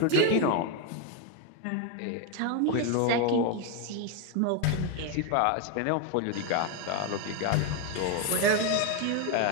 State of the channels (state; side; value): different; both; correlation 0.02